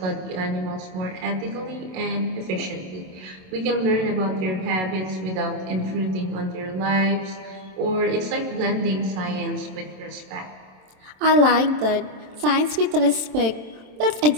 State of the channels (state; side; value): late; left; 27 ms